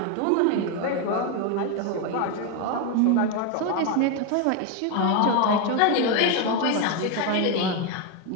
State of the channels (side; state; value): both; different; correlation 0.02